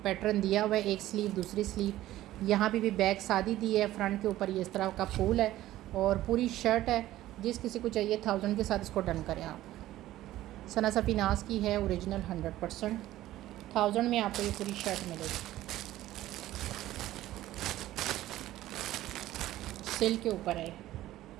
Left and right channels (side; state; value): left; quieter; 14.8 dB